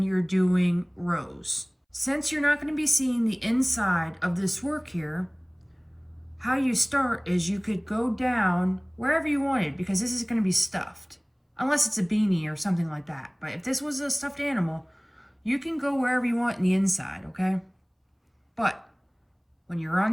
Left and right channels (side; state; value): both; identical; correlation 1.00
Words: you're doing rows. Since you're not going to be seeing the inside of this work here, how you start is you could go down wherever you wanted because this is going to be stuffed. Unless it's a beanie or something like that. But if this was a stuffed animal, you can go wherever you want in the inside, okay? But when you're